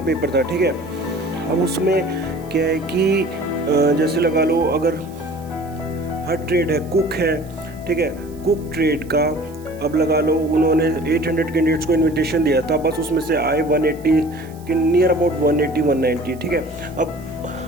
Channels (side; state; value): right; noise; hiss, 25 dB below the sound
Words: पेपर था। ठीक है, अब उसमें क्या है कि जैसे लगा लो, अगर हर ट्रेड है, कुक है, ठीक है, कुक ट्रेड का अब लगा लो उन्होंने 800 कैंडिडेट्स को इनविटेशन दिया था, बस उसमें से आए 180 के नियर अबाउट 180-190। ठीक है, अब